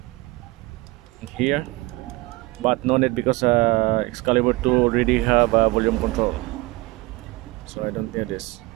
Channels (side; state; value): left; quieter; 21.8 dB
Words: here, but no need because Excalibur 2 already have a volume control, so I don't need this.